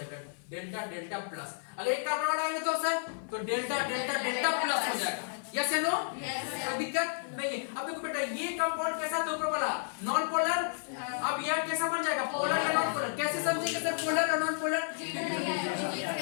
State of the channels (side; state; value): right; silent; 56 dB below the other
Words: डेल्टा डेल्टा प्लस। अगर एक कार्बन हटाएंगे तो सर तो डेल्टा डेल्टा डेल्टा प्लस हो जाएगा, यस या नो, कोई दिक्कत नहीं है। अब देखो बेटा ये कंपाउंड कैसा था ऊपर वाला नॉन पोलर, अब यह कैसा बन जाएगा पोलर या नॉन पोलर, कैसे समझेंगे सर पोलर और नॉन पोलर।